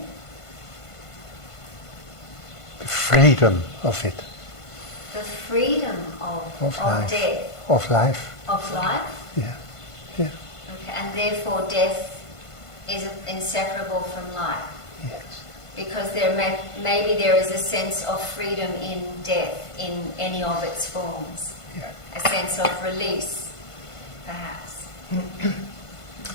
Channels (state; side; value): late; right; 1.5 ms